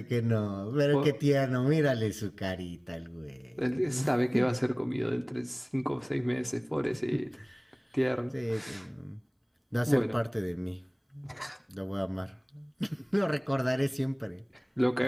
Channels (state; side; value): identical; both; correlation 1.00